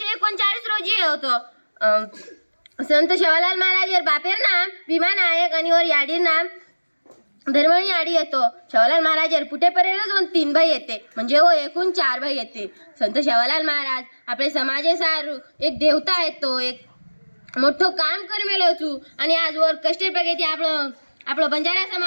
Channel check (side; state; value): both; inverted; correlation -1.00